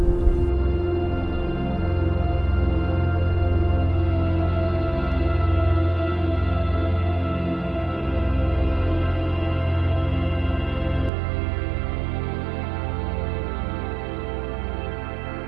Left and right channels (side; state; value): left; drops out; at 11.1 s